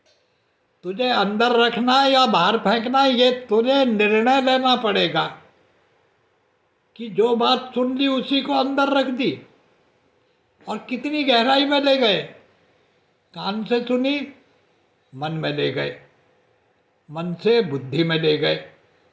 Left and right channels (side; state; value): both; identical; correlation 1.00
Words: तुझे अंदर रखना है या बाहर फेंकना है, ये तुझे निर्णय लेना पड़ेगा कि जो बात सुन ली उसी को अंदर रख दी। और कितनी गहराई में ले गए। कान से सुनी, मन में ले गए, मन से बुद्धि में ले गए,